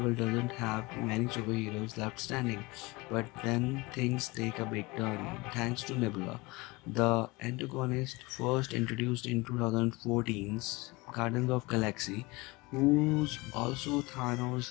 doesn't have many superheroes left standing. But then things take a big turn thanks to Nebula, the antagonist first introduced in 2014's Guardians of Galaxy, who's also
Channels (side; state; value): right; quieter; 23.9 dB